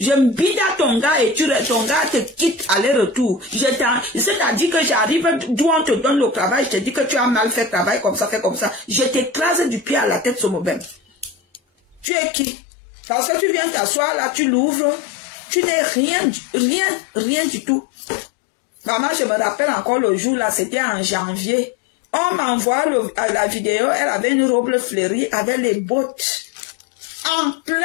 me bide à ton gars et ton gars te quitte aller-retour. C'est-à-dire que j'arrive d'où on te donne le travail, je te dis que tu as mal fait travail comme ça, fait comme ça. Je t'écrase du pied à la tête, ce mobile. Tu es qui? Parce que tu viens t'asseoir là, tu l'ouvres, tu n'es rien du tout. Maman, je me rappelle encore le jour là, c'était en janvier. On m'envoie la vidéo, elle avait une robe fleurie avec les bottes. En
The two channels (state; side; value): drops out; right; at 12.1 s